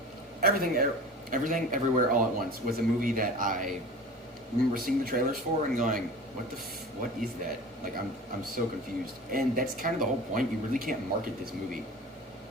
Everything, Everywhere, All at Once was a movie that I remember seeing the trailers for and going, what is that? Like I'm so confused. And that's kind of the whole point. You really can't market this movie.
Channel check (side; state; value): both; normal; correlation 0.37